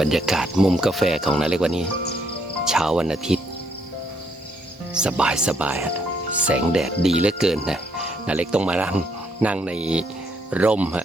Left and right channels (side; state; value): both; normal; correlation 0.72